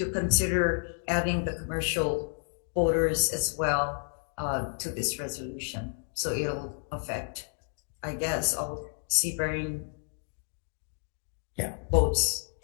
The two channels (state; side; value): silent; right; digital silence